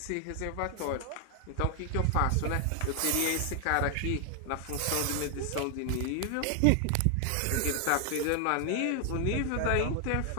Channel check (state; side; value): different; both; correlation 0.00